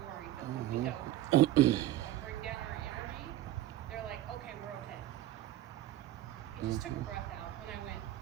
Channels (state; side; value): quieter; left; 14.2 dB